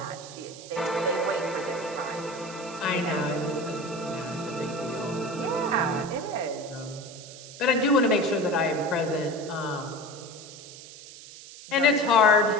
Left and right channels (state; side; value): noise; right; hiss, 16 dB below the sound